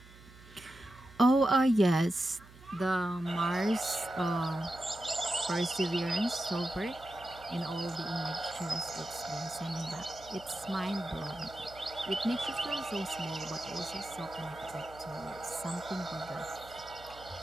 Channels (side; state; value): right; noise; hum, 21 dB below the sound